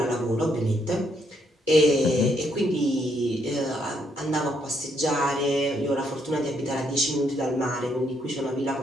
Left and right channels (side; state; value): both; normal; correlation 0.74